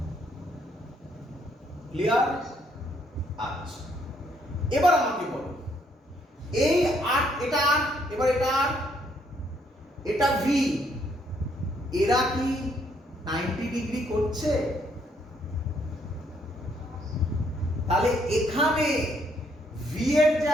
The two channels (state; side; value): normal; both; correlation 0.70